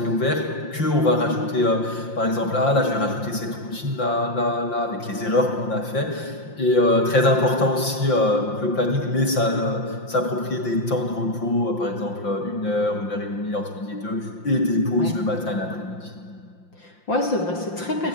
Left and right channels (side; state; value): right; late; 5.7 ms